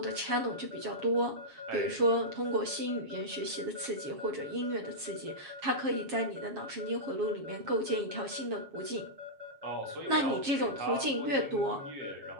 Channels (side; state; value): left; late; 7.3 ms